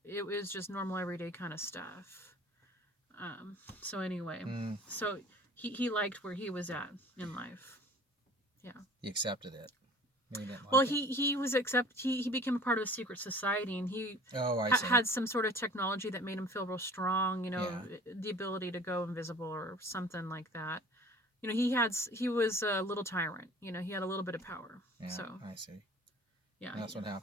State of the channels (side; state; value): both; normal; correlation 0.46